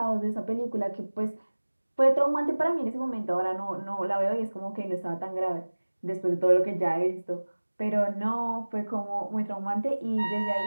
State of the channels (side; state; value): both; inverted; correlation -1.00